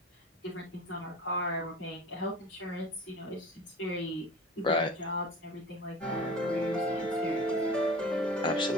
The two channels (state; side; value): normal; both; correlation 0.38